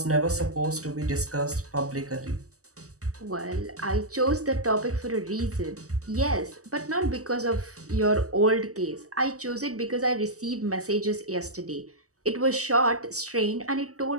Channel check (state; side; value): late; left; 0.66 ms